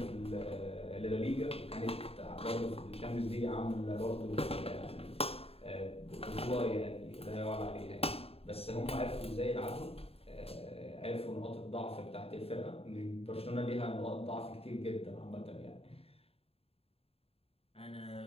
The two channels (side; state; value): right; late; 0.28 ms